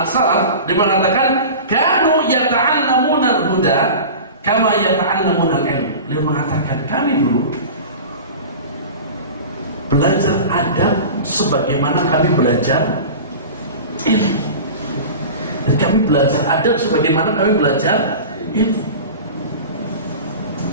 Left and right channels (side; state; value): both; inverted; correlation -0.34